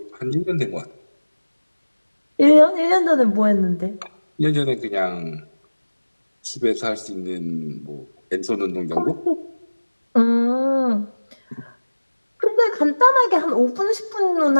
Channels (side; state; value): both; inverted; correlation -1.00